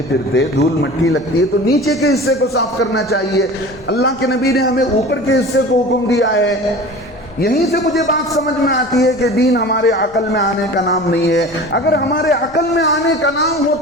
پھرتے دھول مٹی لگتی ہے تو نیچے کے حصے کو صاف کرنا چاہیے۔ اللہ کے نبی نے ہمیں اوپر کے حصے کو حکم دیا ہے۔ یہیں سے مجھے بات سمجھ میں آتی ہے کہ دین ہمارے عقل میں آنے کا نام نہیں ہے۔ اگر ہمارے عقل میں آنے کا نام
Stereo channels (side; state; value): left; noise; rumble, 25 dB below the sound